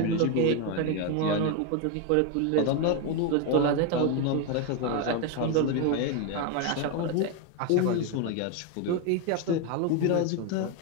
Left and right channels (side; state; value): both; different; correlation 0.02